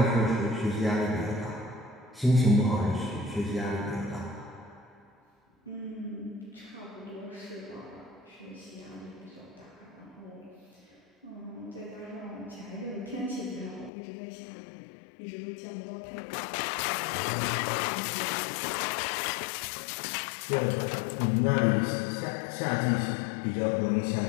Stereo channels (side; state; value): right; drops out; at 13.9 s